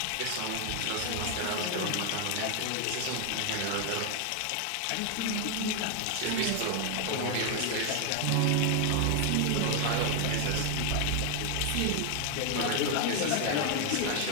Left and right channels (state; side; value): different; both; correlation 0.01